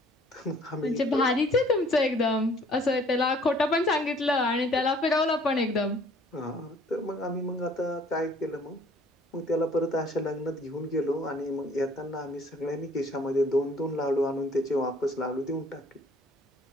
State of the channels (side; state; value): both; normal; correlation 0.57